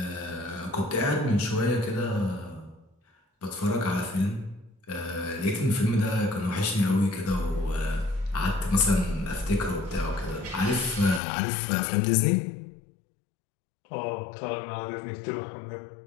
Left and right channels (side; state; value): right; drops out; at 11.2 s